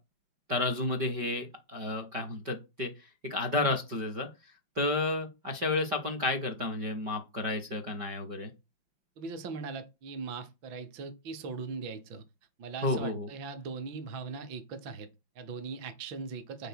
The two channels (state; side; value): late; left; 5.2 ms